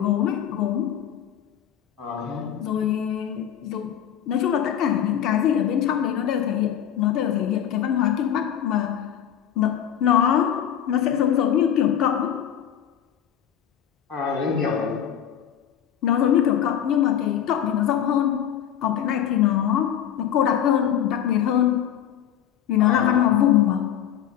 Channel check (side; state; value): right; quieter; 9.7 dB